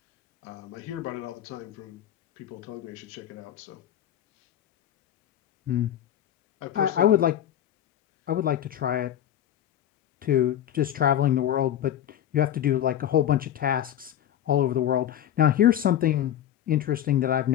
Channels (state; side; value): quieter; right; 10.9 dB